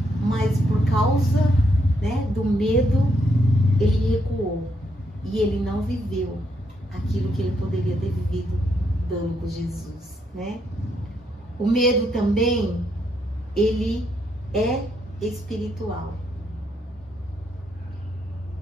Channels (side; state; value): both; normal; correlation 0.77